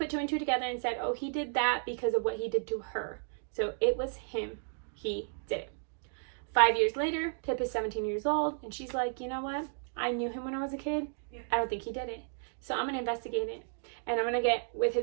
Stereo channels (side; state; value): left; silent; digital silence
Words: 2 and 2 together and said, oh, he did that because of what he did to her. So it was him. He did it. 5 years later, Pip is 17 years old, and she's like, you know what? I knew him when I was a kid. I don't think he did it. So I'm going to investigate it. And I'm going to get with